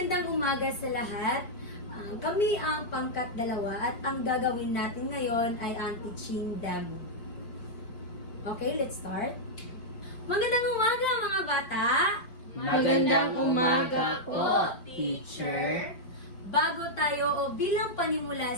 umaga sa lahat. Kami ang pangkat 2 at ang gagawin natin ngayon ay ang teaching demo. Okay, let's start. Magandang umaga mga bata! Magandang umaga po, teacher. Bago tayo o bilang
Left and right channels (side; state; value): right; late; 5.1 ms